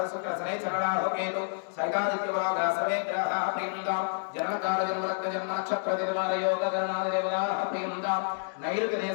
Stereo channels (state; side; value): silent; right; digital silence